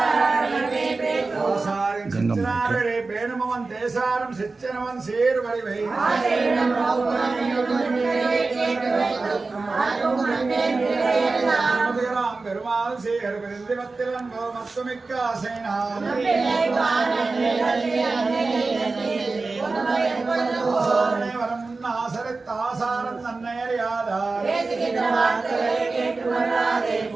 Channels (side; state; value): left; quieter; 3.8 dB